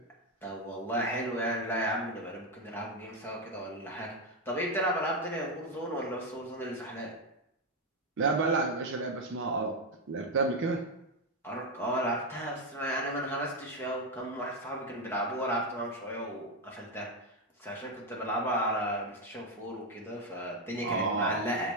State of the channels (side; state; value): both; normal; correlation 0.06